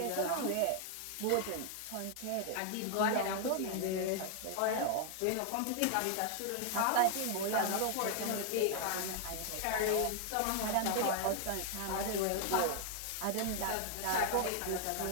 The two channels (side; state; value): both; different; correlation 0.00